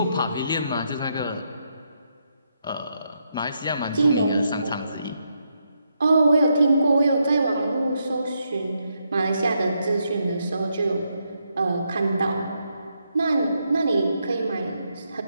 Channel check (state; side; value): inverted; both; correlation -0.80